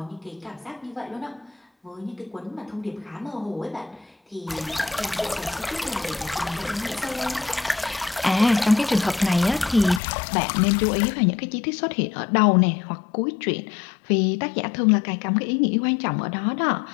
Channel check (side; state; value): right; drops out; at 10.0 s